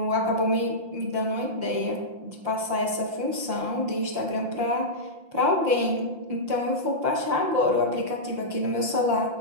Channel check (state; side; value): late; left; 5.8 ms